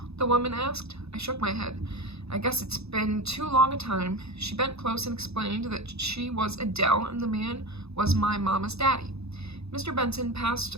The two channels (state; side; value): late; left; 0.79 ms